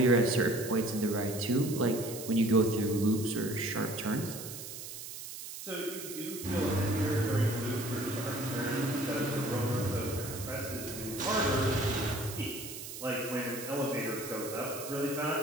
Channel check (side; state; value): right; noise; hiss, 10 dB below the sound